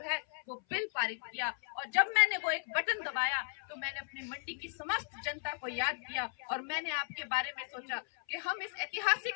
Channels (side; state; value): right; silent; 54 dB below the other